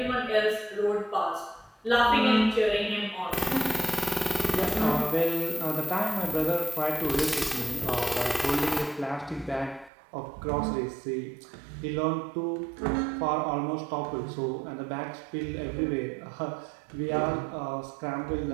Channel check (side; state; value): left; drops out; at 9.9 s